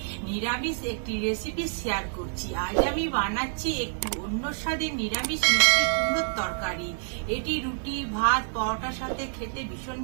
নিরামিষ একটি রেসিপি শেয়ার করছি। আজ আমি বানাচ্ছি একটু অন্য স্বাদের নিরামিষ মিষ্টি কুমড়োর তরকারি। এটি রুটি, ভাত, পরোটার সাথে খেতে ভীষণ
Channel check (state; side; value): silent; left; 60 dB below the other